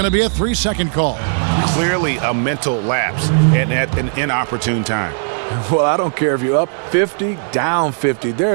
to be a 3-second call. Clearly a mental lapse and at an inopportune time. Well, I don't care if you're up 50, down 50.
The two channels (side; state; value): left; silent; digital silence